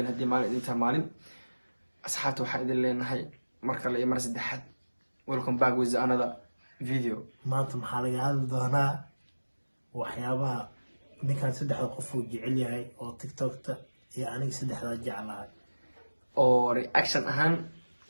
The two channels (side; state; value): both; inverted; correlation -1.00